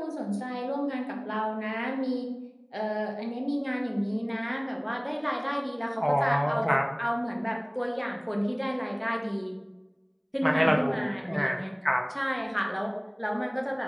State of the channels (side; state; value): both; identical; correlation 1.00